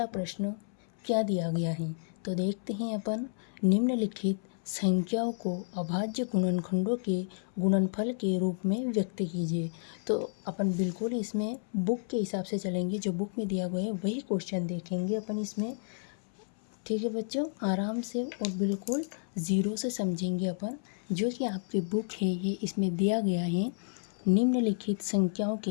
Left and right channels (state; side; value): silent; right; 57 dB below the other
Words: प्रश्न क्या दिया गया है, तो देखते हैं अपन। निम्नलिखित संख्याओं को अभाज्य गुणनखंडों के गुणनफल के रूप में व्यक्त कीजिए। तो अपन बिल्कुल इसमें बुक के हिसाब से चलेंगे, जो बुक में दिया गया है वही क्वेश्चन देखेंगे अपन इसमें। ठीक है बच्चों, आराम से और बिल्कुल ज़ीरो से समझेंगे अपन। जो कि आपकी बुक है ये इसमें दिया गया है, निम्नलिखित संख्याओं के